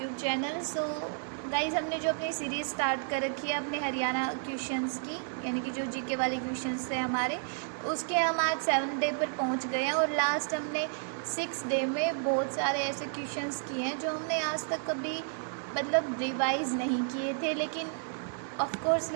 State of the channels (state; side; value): silent; left; 57 dB below the other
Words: channel. So guys, हमने जो अपनी series start कर रखी है अपने हरियाणा क्वेश्चंस की, यानी कि जो जीके वाले क्वेश्चंस थे हमारे, उसके हम आज 7th डे पर पहुंच गए हैं। और लास्ट हमने 6th डे में बहुत सारे ऐसे क्वेश्चंस किए हैं जो हमने आज तक कभी रिवाइज़ नहीं किए थे। लेकिन